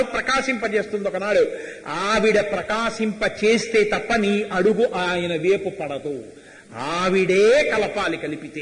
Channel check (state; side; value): identical; both; correlation 1.00